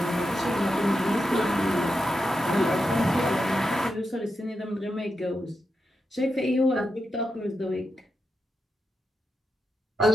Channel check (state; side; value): normal; both; correlation 0.87